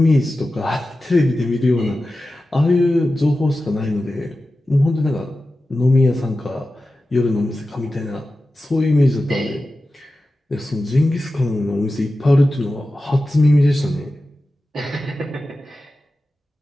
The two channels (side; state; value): both; normal; correlation 0.94